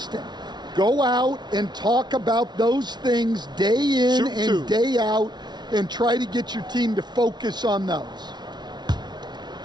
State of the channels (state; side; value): late; left; 0.20 ms